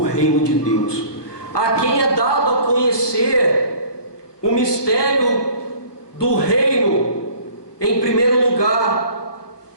reino de Deus. A quem é dado a conhecer o mistério do reino, em primeiro lugar,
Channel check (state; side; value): late; right; 1.2 ms